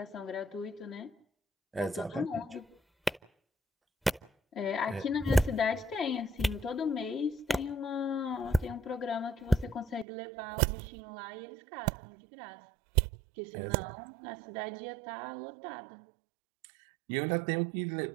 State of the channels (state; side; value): drops out; left; at 10.1 s